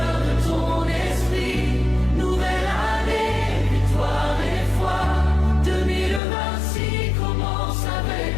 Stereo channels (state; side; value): drops out; right; at 6.2 s